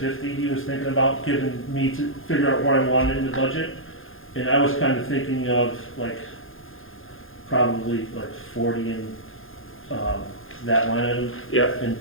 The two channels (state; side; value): late; right; 0.59 ms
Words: he was thinking about giving me to figure out where I wanted in the budget. And I was kind of thinking of like, probably like 40 in that line item, yeah, and